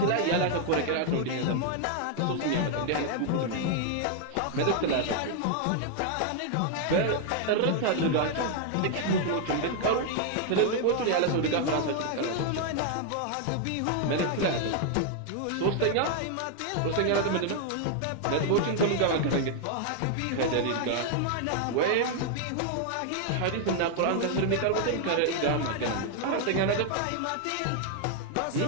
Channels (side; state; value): both; different; correlation 0.00